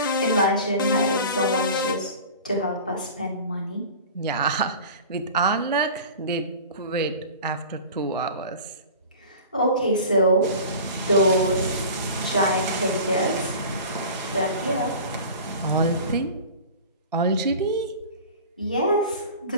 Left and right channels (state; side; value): inverted; both; correlation -0.38